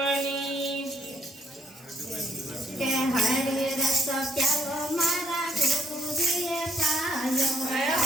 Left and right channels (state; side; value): normal; both; correlation 0.70